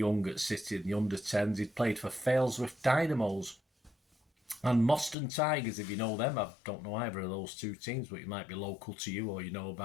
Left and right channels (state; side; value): drops out; right; at 5.2 s